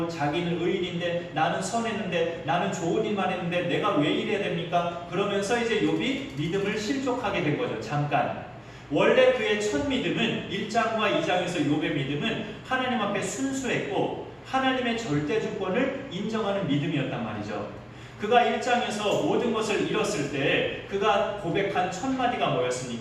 자기는 의인인데 나는 선했는데 나는 좋은 일만 했는데 내가 왜 이래야 됩니까? 그러면서 이제 욥이 믿음을 실족하게 된 거죠. 잠깐. 원래 그의 첫 믿음은 1장과 2장에서 욥의 믿음은 하나님 앞에 순수했고 하나님의 절대 주권을 인정하는 믿음이었단 말이죠. 그가 1장에서 모든 것을 잃었을 때 그가 고백한 첫 마디가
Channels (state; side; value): identical; both; correlation 1.00